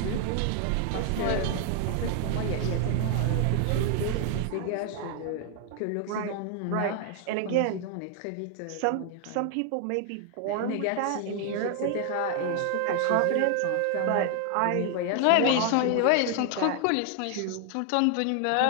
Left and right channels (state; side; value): different; both; correlation 0.00